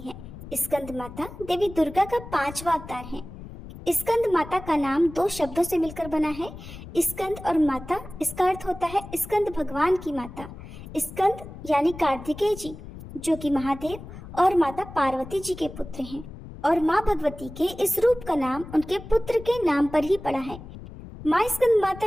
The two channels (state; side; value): noise; left; rumble, 14 dB below the sound